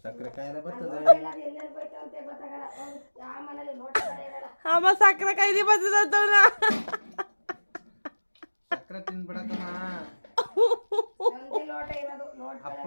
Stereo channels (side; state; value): both; inverted; correlation -1.00